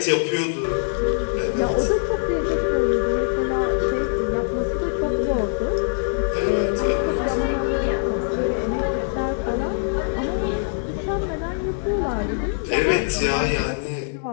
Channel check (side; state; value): right; silent; digital silence